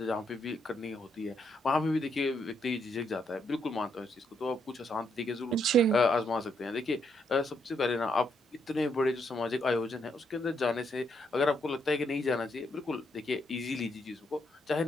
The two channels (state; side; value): normal; both; correlation 0.76